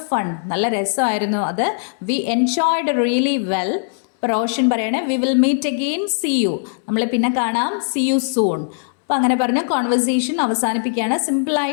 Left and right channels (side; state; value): right; silent; 66 dB below the other